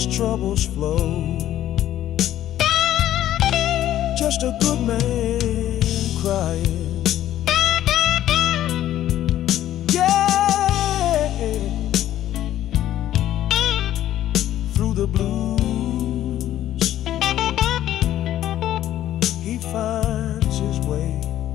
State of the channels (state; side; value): quieter; right; 12.5 dB